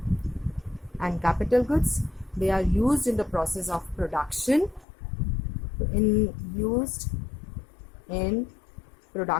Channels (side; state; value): right; drops out; at 4.9 s